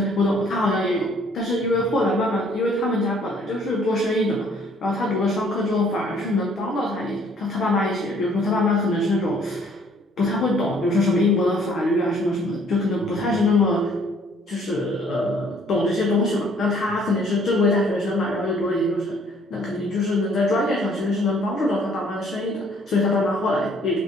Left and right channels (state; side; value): normal; both; correlation 0.60